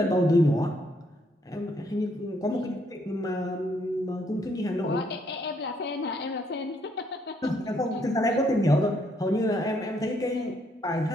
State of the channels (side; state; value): both; normal; correlation 0.71